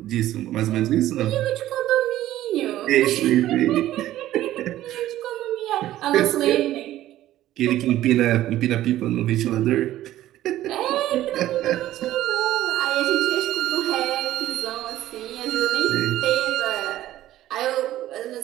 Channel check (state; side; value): quieter; left; 14.0 dB